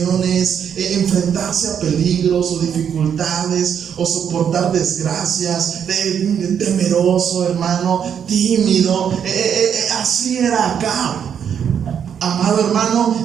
enfrentarse a peligros o dificultades o soportar desgracias, temeroso, hermano, tímido. Así era Acab, amado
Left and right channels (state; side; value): quieter; left; 8.1 dB